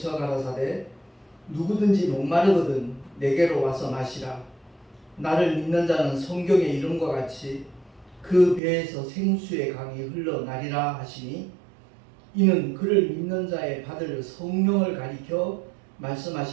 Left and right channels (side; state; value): left; drops out; at 8.6 s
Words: 가라사대 누구든지 목마르거든 내게로 와서 마시라. 나를 믿는 자는 성경의 이름과 같이 그 배에서 생수의 강이 흘러나리라 하시니 이는 그를 믿는 자의 받을 성령을 가리켜